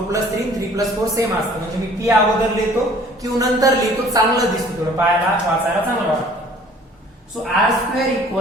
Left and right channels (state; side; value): normal; both; correlation 0.53